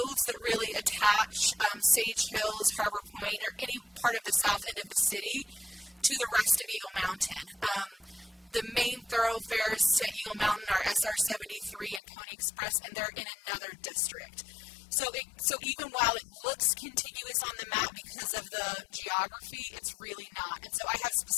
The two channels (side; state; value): right; drops out; at 12.0 s